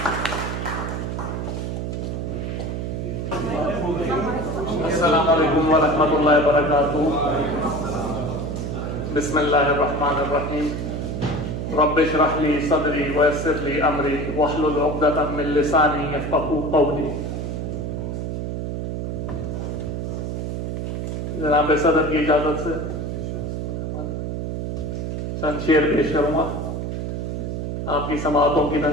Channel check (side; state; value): right; noise; hum, 3 dB below the sound